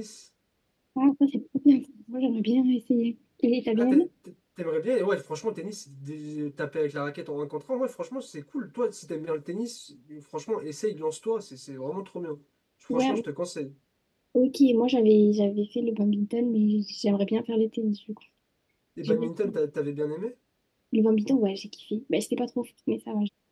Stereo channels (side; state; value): both; identical; correlation 1.00